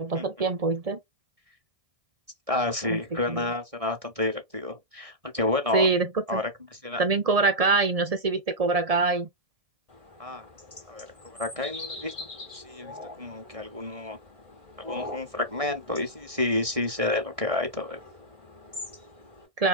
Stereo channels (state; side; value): late; left; 1.6 ms